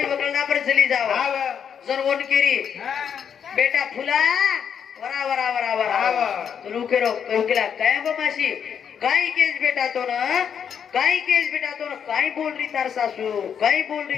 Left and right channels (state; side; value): quieter; right; 7.8 dB